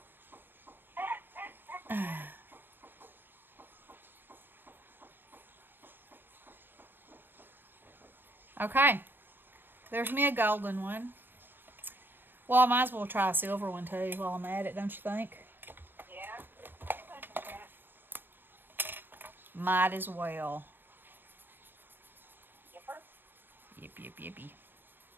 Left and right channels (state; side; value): late; left; 0.095 ms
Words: Okay. There's me a golden one. Well, I might as well try a silver one too while I'm at it, don't you think? Yeah. Might as well. Yipper. Yip, yip, yippy.